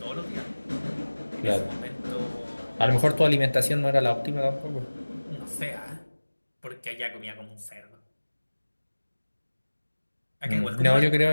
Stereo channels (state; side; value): inverted; both; correlation -1.00